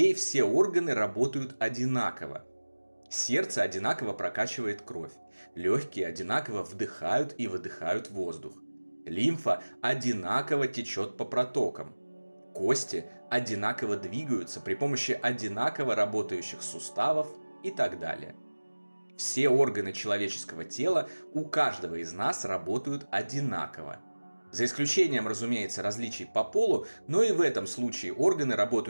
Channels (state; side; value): inverted; both; correlation -1.00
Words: все органы работают одинаково. Сердце одинаково прокачивает кровь, легкие одинаково вдыхают и выдыхают воздух, лимфа одинаково течет по протокам, кости одинаково двигаются при помощи одинаково работающих суставов и так далее. Все органы человеческого тела у каждого из нас работают одинаково. За исключением, разумеется, различий по полу, но и в этом случае органы